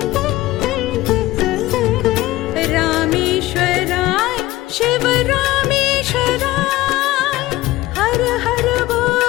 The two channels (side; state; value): right; quieter; 17.4 dB